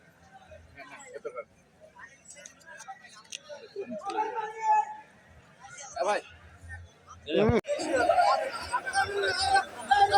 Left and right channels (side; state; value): both; identical; correlation 1.00